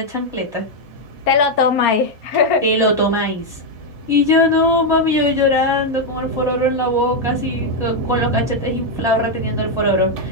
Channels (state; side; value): normal; both; correlation 0.01